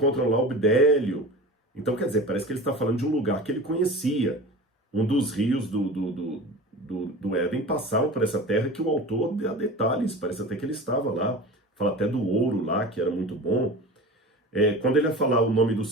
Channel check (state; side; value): normal; both; correlation 0.34